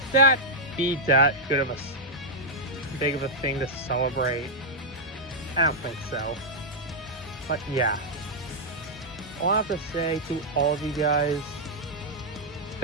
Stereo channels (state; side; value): normal; both; correlation -0.04